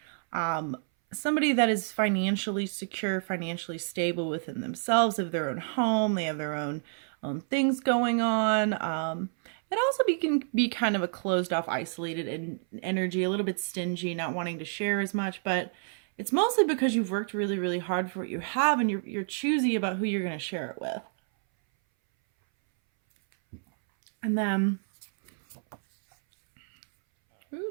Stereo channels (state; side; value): silent; left; 59 dB below the other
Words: Somebody that is financially secure, financially stable within themselves, of their own home. They have their own things going on. It also can be kind of a closed off, isolated energy, a little bit stingy, not wanting to share as much, but it's mostly because you've worked really, really hard for what you have, and you're choosy about who you're going to share it with. And then,